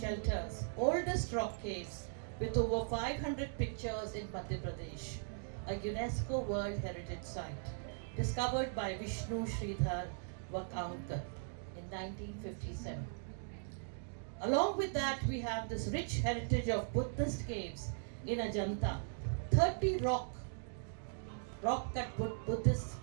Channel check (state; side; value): silent; left; digital silence